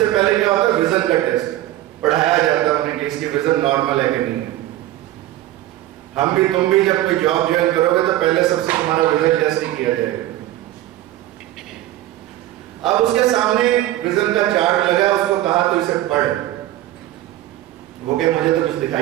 पहले क्या होता है, विजन का टेस्ट पढ़ाया जाता है उन्हें कि इसकी विजन नॉर्मल है कि नहीं है। हम भी तुम भी जब कोई जॉब ज्वाइन करोगे तो पहले सबसे तुम्हारा विजन टेस्ट ही किया जाएगा। अब उसके सामने विजन का चार्ट लगा, उसको कहा तो इसे पढ़। वो कहे मुझे तो कुछ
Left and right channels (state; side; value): quieter; left; 14.7 dB